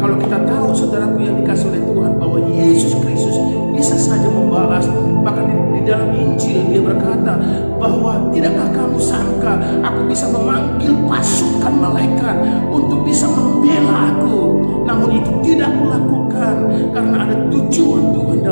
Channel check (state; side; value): inverted; both; correlation -1.00